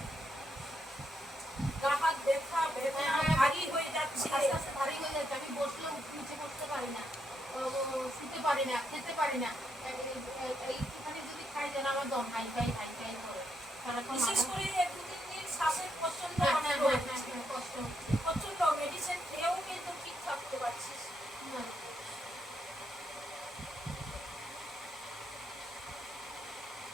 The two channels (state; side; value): normal; both; correlation 0.78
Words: গা হাত ব্যথা বেদনা ভারী হয়ে যাচ্ছে, আস্তে আস্তে ভারী হয়ে যাচ্ছে। আমি বসলেও নিচে বসতে পারি না, শুতে পারি না, খেতে পারি না। এইখানে যদি খাই যেন আমার দম হাই ফাই করে। বিশেষ করে 2-3 দিন শ্বাসের প্রচন্ড কষ্ট হচ্ছে। প্রচন্ড মেডিসিন খেয়েও কিন্তু ঠিক থাকতে পারছিস না।